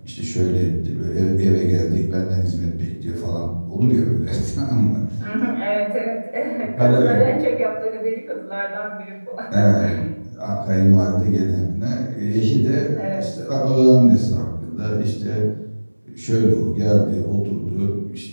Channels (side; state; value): both; inverted; correlation -1.00